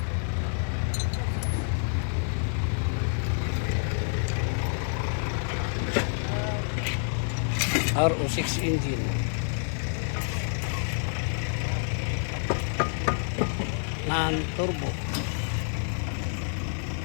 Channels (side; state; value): right; silent; digital silence